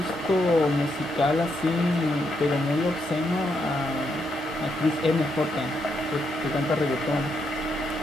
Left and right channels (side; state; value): both; normal; correlation 0.79